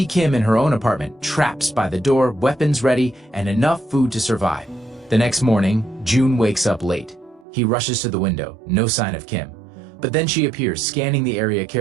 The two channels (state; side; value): drops out; left; at 7.5 s